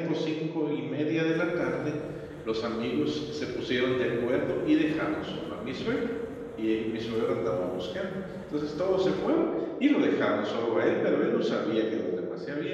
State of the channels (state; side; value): identical; both; correlation 1.00